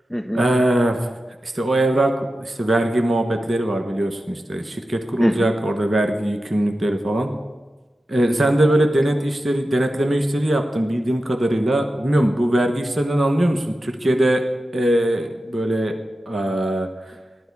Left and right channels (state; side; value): normal; both; correlation 0.92